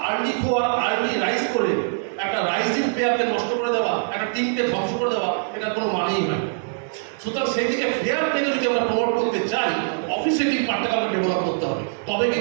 আর্লি খোয়া, আর্লি রাইজ করে একটা রাইজিং প্লেয়ারকে নষ্ট করে দেওয়া, একটা টিমকে ধ্বংস করে দেওয়া, এটার কোনো মানেই হয়। সুতরাং সেই দিকে ফেয়ার প্লেকে যদি আমরা প্রমোট করতে চাই, অফিসিয়ালি পার্টটাকে আমরা ডেভেলপ করতে হবে, তবে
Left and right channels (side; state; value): left; silent; digital silence